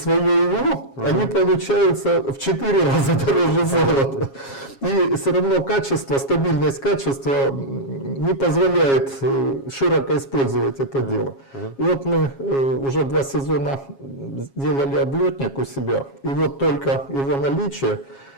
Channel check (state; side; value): late; right; 7.3 ms